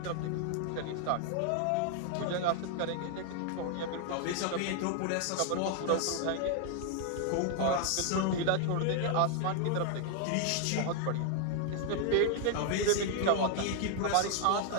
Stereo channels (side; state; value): both; different; correlation 0.00